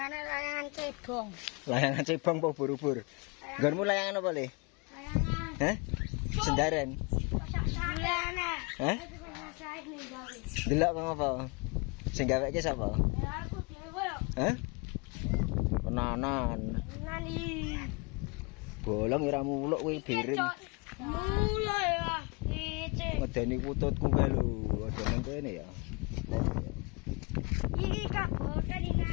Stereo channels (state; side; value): quieter; right; 30.2 dB